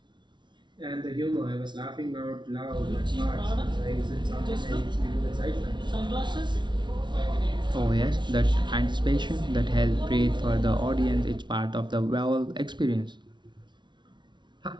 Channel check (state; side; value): late; left; 0.23 ms